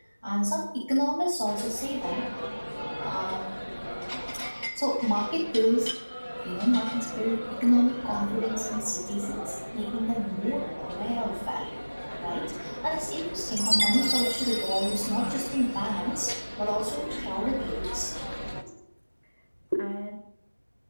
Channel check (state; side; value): inverted; both; correlation -1.00